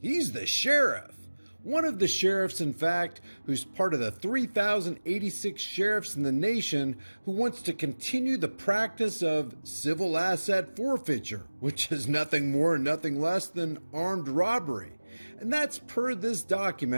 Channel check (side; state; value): both; inverted; correlation -1.00